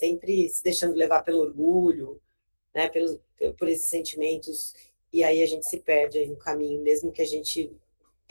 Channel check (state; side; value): inverted; both; correlation -1.00